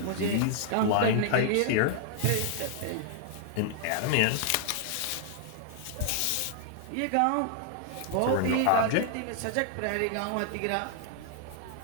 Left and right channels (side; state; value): both; different; correlation 0.00